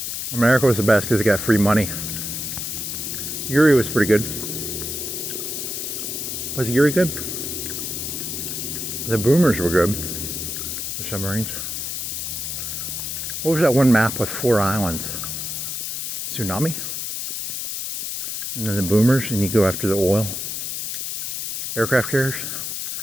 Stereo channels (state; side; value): noise; left; hiss, 4 dB below the sound